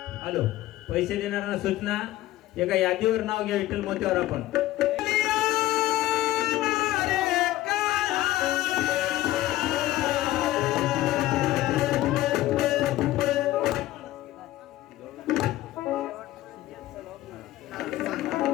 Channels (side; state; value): right; quieter; 15.6 dB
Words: हॅलो, पैसे देणाऱ्यांना सूचना, एका यादीवर नाव घ्या विठ्ठल मोत्यावर आपण.